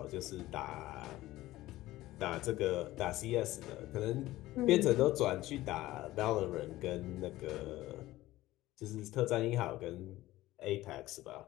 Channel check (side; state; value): right; quieter; 16.7 dB